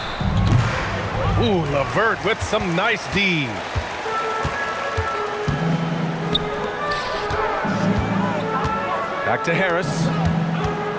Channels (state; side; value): identical; both; correlation 1.00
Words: Ooh, LeVert with some nice D. Back to Harris.